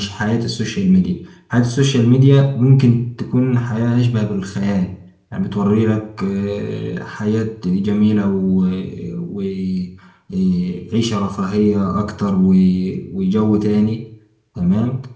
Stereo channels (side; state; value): both; identical; correlation 1.00